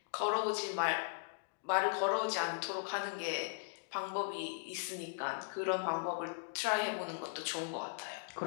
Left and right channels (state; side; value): silent; right; digital silence